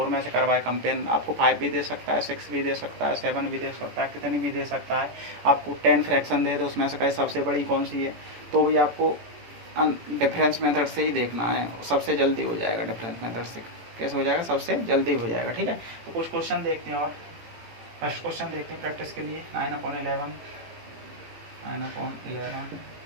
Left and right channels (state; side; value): late; left; 17 ms